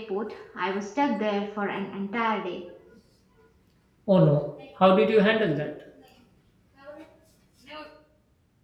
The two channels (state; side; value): identical; both; correlation 1.00